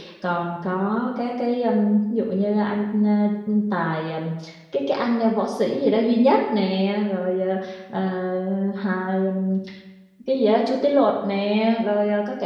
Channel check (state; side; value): identical; both; correlation 1.00